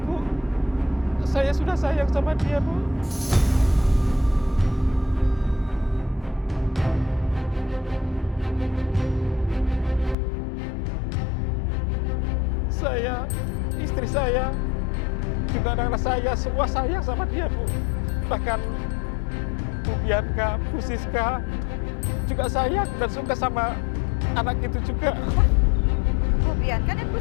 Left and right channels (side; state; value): right; drops out; at 10.2 s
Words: Bu. Saya sudah sayang sama dia, Bu. Saya, istri saya, juga anak-anak saya, semua sayang sama dia, Bu. Bahkan Bu Bianca, Bu Siska juga sayang dan suka sama anak itu juga. Bu Bianca dan Bu